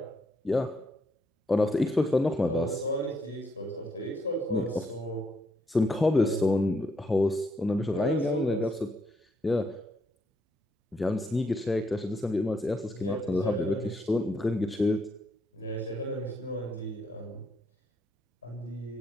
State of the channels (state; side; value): normal; both; correlation 0.76